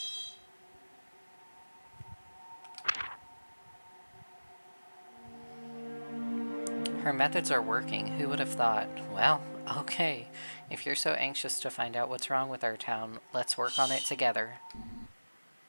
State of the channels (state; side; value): inverted; both; correlation -1.00